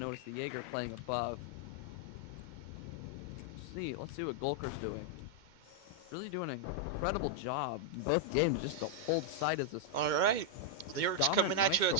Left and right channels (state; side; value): late; left; 2.1 ms